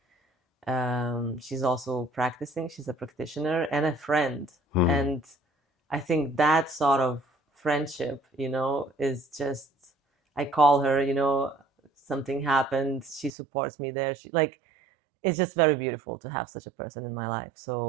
She's also practicing. She's a practitioner and a friend. And I think that sort of friendship, is just, I call her, something happened. She supports me there. It's just very beautiful to have such a person in my life.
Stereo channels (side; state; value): left; drops out; at 13.4 s